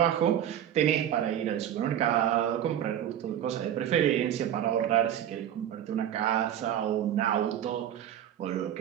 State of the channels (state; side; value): quieter; left; 10.6 dB